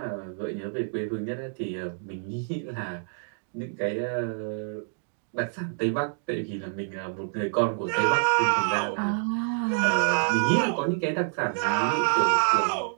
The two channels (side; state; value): left; silent; digital silence